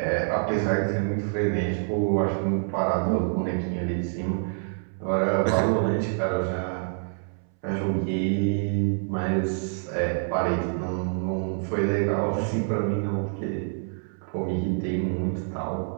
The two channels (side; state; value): left; silent; 60 dB below the other